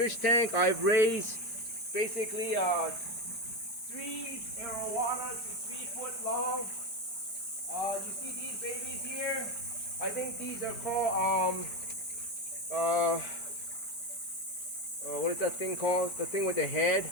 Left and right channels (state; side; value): late; right; 4.8 ms